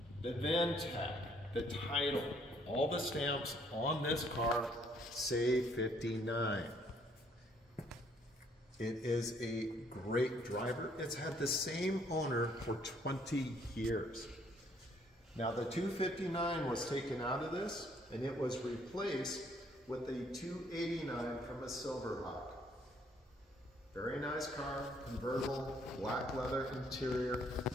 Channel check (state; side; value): normal; both; correlation 0.65